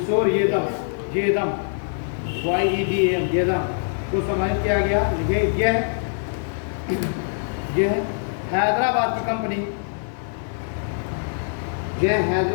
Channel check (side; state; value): right; silent; 63 dB below the other